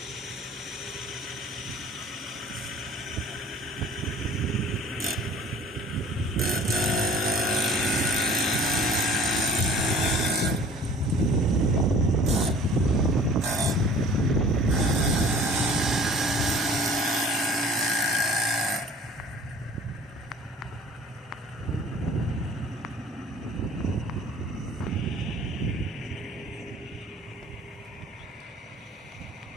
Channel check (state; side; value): normal; both; correlation 0.49